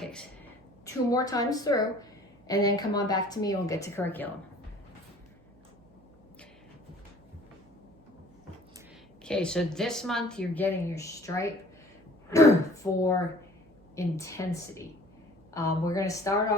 2 more times through, and then come on back to me and we'll get to curriculum. Okay, so this month you're getting your stripe for intensity. We're going to start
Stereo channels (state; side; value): noise; right; hum, 29 dB below the sound